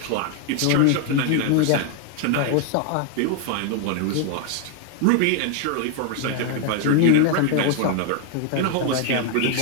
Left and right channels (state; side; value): different; both; correlation 0.00